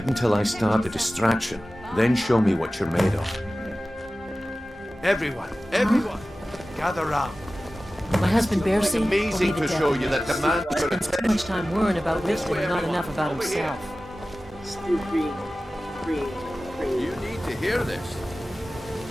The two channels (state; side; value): normal; both; correlation 0.96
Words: until I start the distraction, then show me what you're made of. Everyone, gather round. My husband Bearsea will be Amazing the to death show of you me. that the man He spends too much time worrying about Riften and not enough about himself. Still green. You need to hear this.